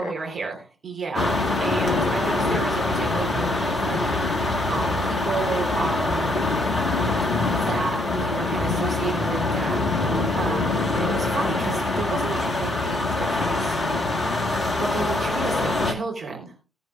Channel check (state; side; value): normal; both; correlation 0.70